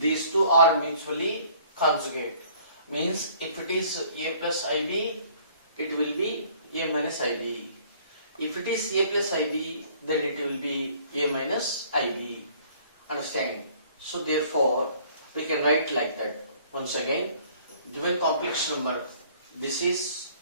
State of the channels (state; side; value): inverted; both; correlation -0.56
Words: two are mutually conjugate, means if it is a plus ib, it will be a minus ib. If it is a plus ib, then it will be a minus ib. Understand? So therefore we can write like that. Once again, given complex number, this is